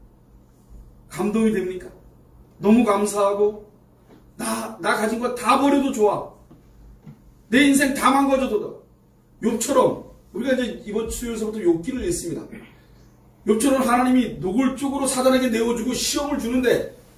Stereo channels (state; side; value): identical; both; correlation 1.00